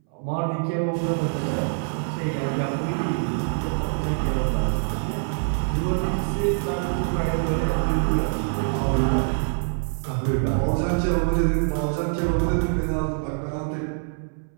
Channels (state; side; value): silent; left; 62 dB below the other